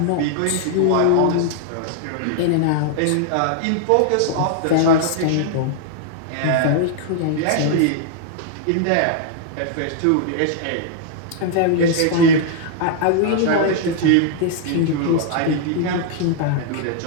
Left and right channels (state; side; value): different; both; correlation -0.01